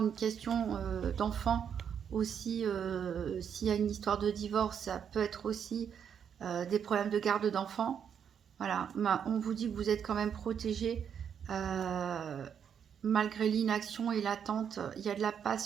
une question d'enfant aussi, s'il y a une histoire de divorce, ça peut être aussi des problèmes de garde d'enfants. Voilà, on vous dit que vous êtes quand même protégé malgré l'inaction et l'attente. Il y a de la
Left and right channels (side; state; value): left; quieter; 7.9 dB